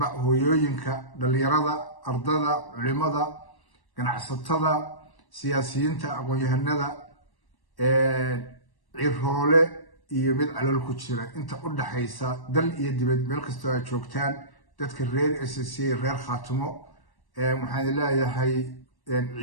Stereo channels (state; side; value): late; right; 1.1 ms